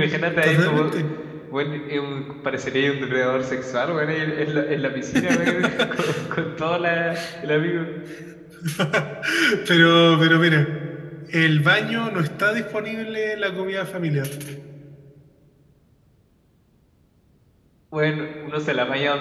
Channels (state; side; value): identical; both; correlation 1.00